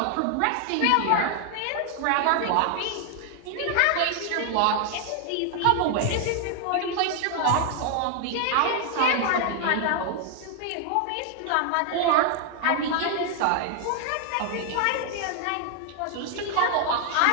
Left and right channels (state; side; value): different; both; correlation 0.00